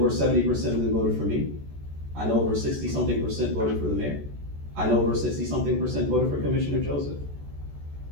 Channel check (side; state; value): left; late; 14 ms